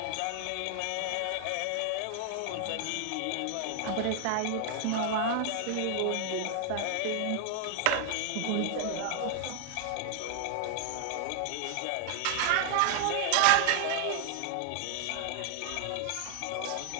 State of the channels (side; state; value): both; different; correlation 0.00